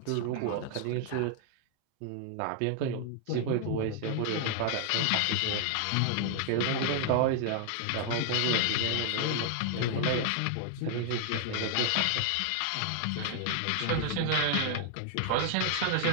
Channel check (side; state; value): both; different; correlation 0.00